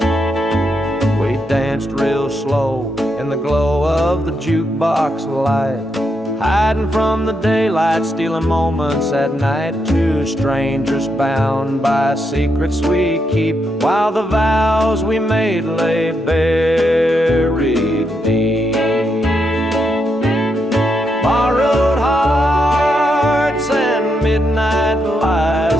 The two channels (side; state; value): both; normal; correlation 0.81